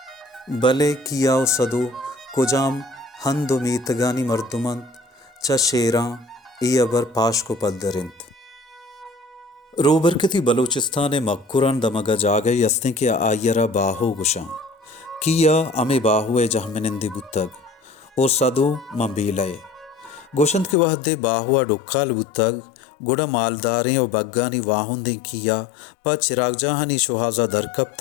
भले कियाओ सदो कुजाम हंदो मीतगानी मर्दुमंत च शेरा ई अबर पाश को पद्दरिंत रोबरकती बलूचिस्तान मक्कुरान दमगा जागे यस्ते के आयरा बाहो गुशा किया अमे बाहुए जहमनिंदी बुतग ओ सदो मंबीलय गोशंत के वहदे बाहुआ डुक्काल बुतग गुड़ा मालदारें और बग्गानी वाहुंदे किया प चिराग जहानी शुहाजा दरकब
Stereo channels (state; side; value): drops out; right; at 20.8 s